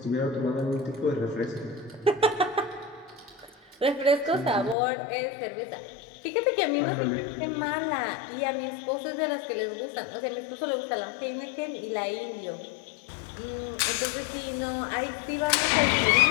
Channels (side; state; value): right; drops out; at 4.8 s